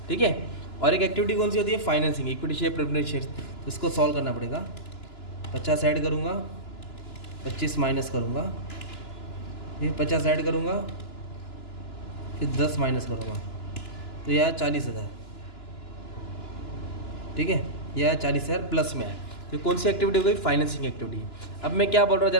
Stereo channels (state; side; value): late; right; 2.9 ms